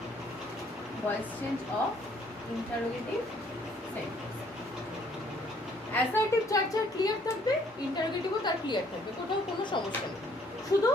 Voice change of interrogative sentence. Assertive যার যার ক্লিয়ার থাকবে, ইন্টারোগেটিভও তার ক্লিয়ার থাকবে, কোথাও কোনো সমস্যা নেই। শুধু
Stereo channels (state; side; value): normal; both; correlation 0.63